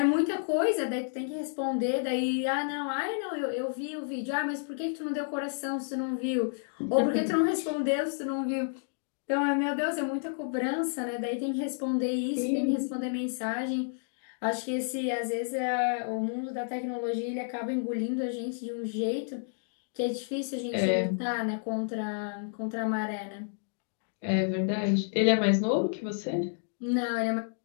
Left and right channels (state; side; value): silent; right; digital silence